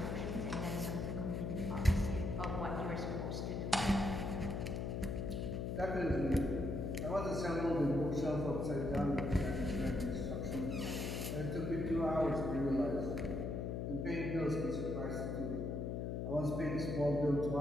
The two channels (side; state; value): left; noise; hum, 2 dB below the sound